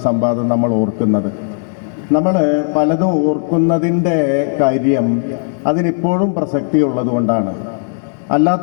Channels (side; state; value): right; silent; digital silence